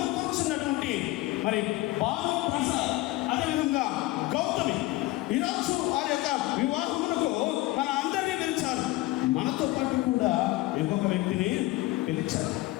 కూర్చున్నటువంటి మరి భాను ప్రసాద్, అదేవిధంగా గౌతమి, ఈరోజు వారి యొక్క వివాహమునకు మన అందరినీ పిలిచారు. మనతో పాటు కూడా ఇంకొక వ్యక్తిని పిలిచారు.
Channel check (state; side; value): quieter; right; 18.7 dB